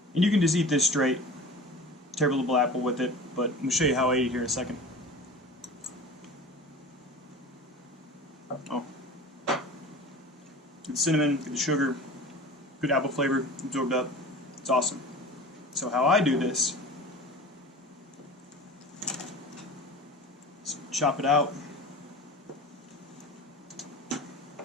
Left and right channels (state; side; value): normal; both; correlation 0.37